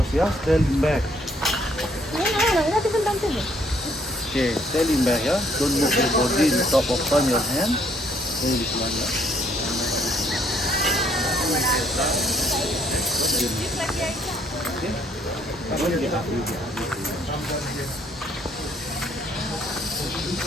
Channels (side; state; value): both; normal; correlation 0.65